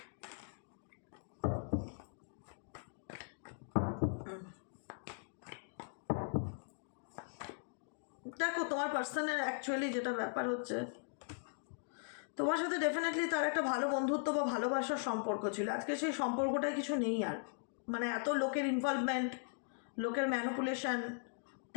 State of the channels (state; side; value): silent; right; digital silence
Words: দেখো, তোমার পার্সনের অ্যাকচুয়ালি যেটা ব্যাপার হচ্ছে, তোমার সাথে ডেফিনেটলি তার একটা ভালো বন্ধুত্ব বা ভালোবাসার সম্পর্ক ছিল। আজকে সেই সম্পর্কটাই কিছু নেই আর, মানে এত লোকের ইনভলভমেন্ট, লোকের ম্যানিপুলেশন,